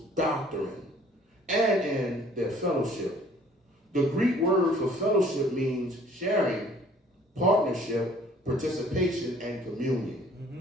doctrine and in their fellowship. The Greek word for fellowship means sharing, partnership, participation, and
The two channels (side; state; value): both; normal; correlation 0.56